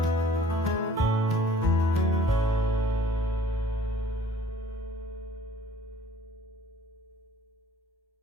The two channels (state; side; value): normal; both; correlation 0.54